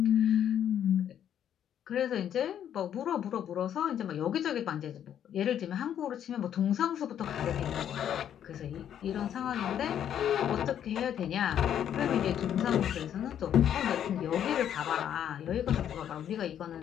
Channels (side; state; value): right; quieter; 9.8 dB